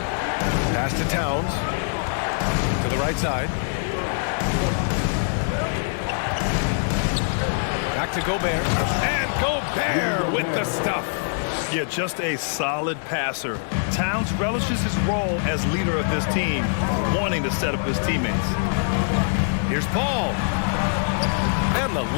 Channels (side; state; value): right; silent; digital silence